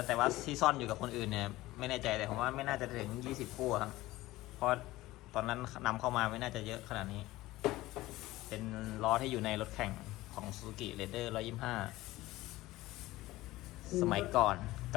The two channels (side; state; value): right; quieter; 17.8 dB